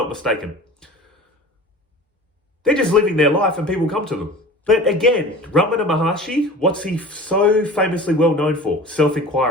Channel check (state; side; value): normal; both; correlation 0.38